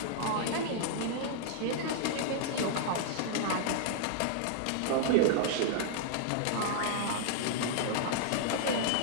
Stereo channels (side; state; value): both; different; correlation -0.01